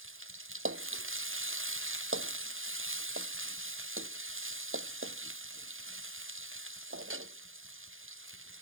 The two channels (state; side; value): late; left; 0.59 ms